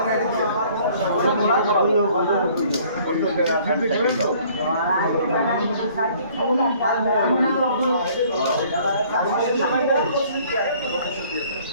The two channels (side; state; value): both; inverted; correlation -0.57